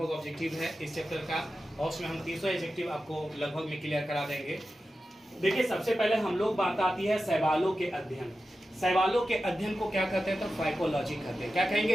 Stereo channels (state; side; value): normal; both; correlation 0.92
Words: ऑब्जेक्टिव है इस चैप्टर का और उसमें हम 300 ऑब्जेक्टिव आपको लगभग में क्लियर करा देंगे। देखिए, सबसे पहले हम लोग बात आती है शैवालों के अध्ययन। शैवालों के अध्ययन को क्या कहते हैं? तो फाइकोलॉजी कहते हैं। क्या कहेंगे?